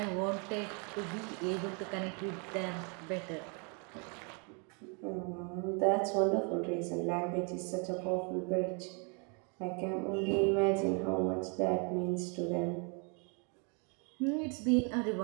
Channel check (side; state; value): left; quieter; 35.7 dB